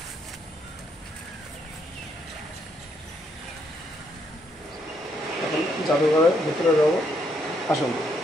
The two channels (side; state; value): both; normal; correlation 0.74